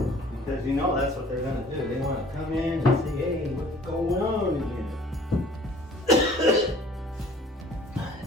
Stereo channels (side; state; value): both; normal; correlation 0.52